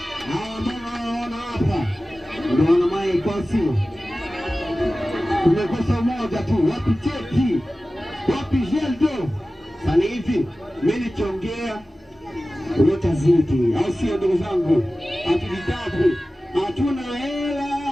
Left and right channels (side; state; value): both; normal; correlation 0.96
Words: Mbona hapa? Ndio wana maiko sio. Tumekosa moja tu, wapi cheki? Wapi jeldo? Sasa hivi mimi nikiongea utazidi, au sio ndugu zangu? Hatujitabu, hatuna